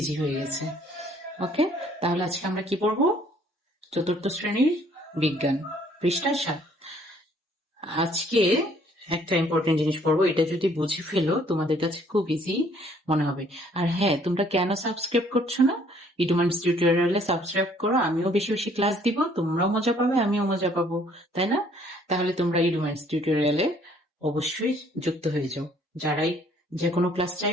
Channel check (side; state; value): both; normal; correlation 0.61